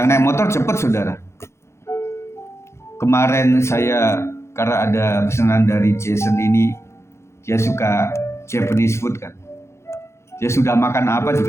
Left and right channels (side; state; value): right; late; 0.13 ms